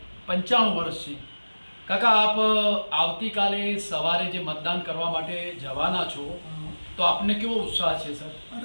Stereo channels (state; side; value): inverted; both; correlation -1.00